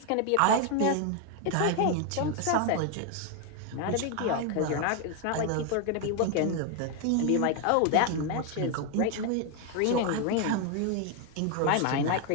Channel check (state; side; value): different; both; correlation 0.01